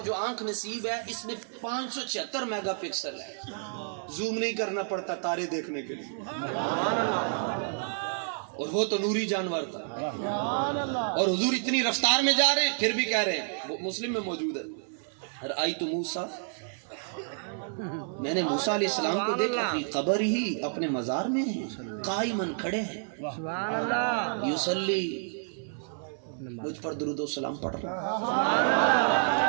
آنکھ نصیب ہے اس میں 576 میگا پکسل ہے زوم نہیں کرنا پڑتا تارے دیکھنے کے لیے اور وہ تو نوری جانور تھا اور حضور اتنی رفتار میں جا رہے ہیں پھر بھی کہہ رہے ہیں مسلم میں موجود ہے رأیت موسیٰ میں نے موسیٰ علیہ السلام کو دیکھا فی قبر ہی اپنے مزار میں ہیں قائمن کھڑے ہیں یصلی مجھ پر درود و سلام پڑھ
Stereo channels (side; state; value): left; silent; 58 dB below the other